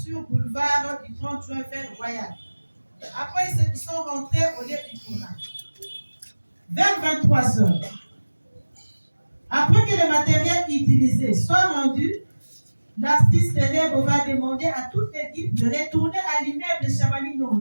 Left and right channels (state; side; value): inverted; both; correlation -1.00